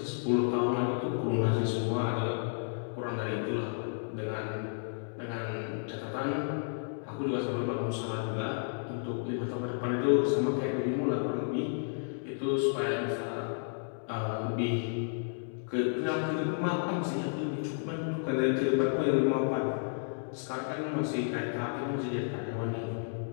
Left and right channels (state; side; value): silent; right; digital silence